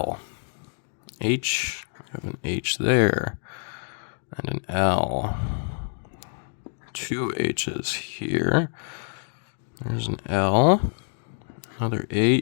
H, I have an H there, and an L. Two H's here. There's an L, another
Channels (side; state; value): right; silent; 56 dB below the other